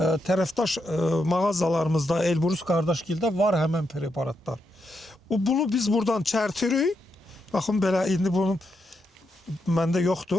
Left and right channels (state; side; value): normal; both; correlation 0.82